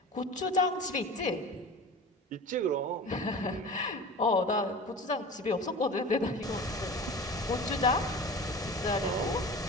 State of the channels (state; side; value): normal; both; correlation 0.35